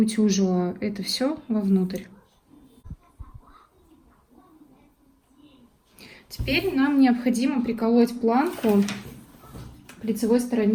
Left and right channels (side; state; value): both; identical; correlation 1.00